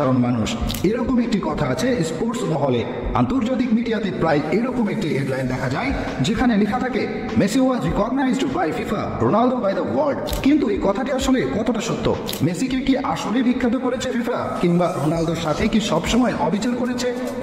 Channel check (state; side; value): identical; both; correlation 1.00